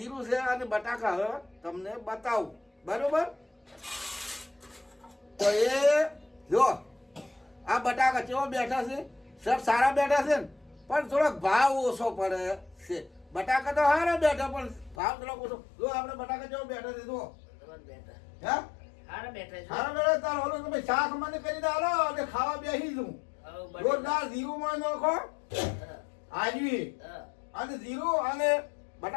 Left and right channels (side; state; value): right; drops out; at 15.0 s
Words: છે અને બટાકા હવે તમને બતાવું બરોબર તો એ જો આ બટાકા કેવા બેઠા છે સર સારા બેઠા છે ને પણ થોડોક ભાવ ઓછો પડે છે બટાકા તો સારા બેઠા પણ ભાવ થોડોક ઓછો જો આપણે બટાકા કેવો બેઠા છે જો હે સારા બેઠા તાર ઓલો તમે શાક મને કરી દાલો અને ખાવા બેસી જઉં જોરદાર ઝીરુમાં નાખો આજવી અને ઝીરો અને